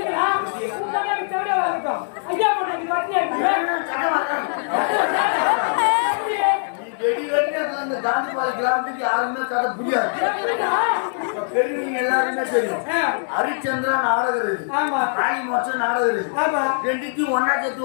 அந்த காந்திபாடி கிராமத்துக்கு யாருமே கதை புரியாது. பெரியவங்க எல்லாருமே தெரியும். ஹரிச்சந்திரா நாடகம் இருக்கு, காளி மோட்சம் நாடகம் இருக்கு. ரெண்டுக்கும் ஒன்னா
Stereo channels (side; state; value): right; silent; digital silence